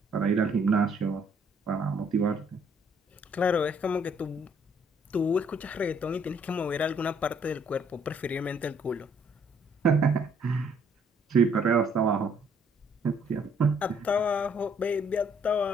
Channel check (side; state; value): both; normal; correlation 0.65